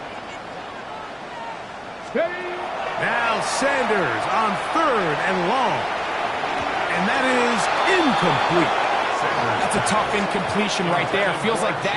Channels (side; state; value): both; identical; correlation 1.00